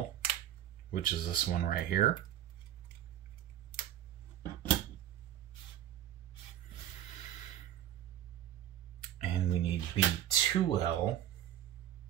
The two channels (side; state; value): left; quieter; 11.7 dB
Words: which is this one right here. And we need B2L,